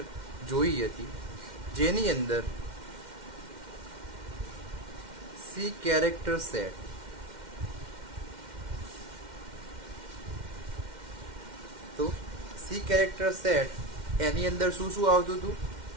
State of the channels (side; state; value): left; late; 2.1 ms